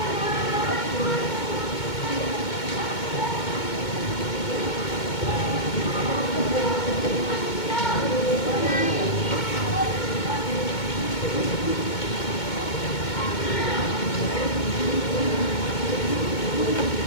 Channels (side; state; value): right; late; 2.2 ms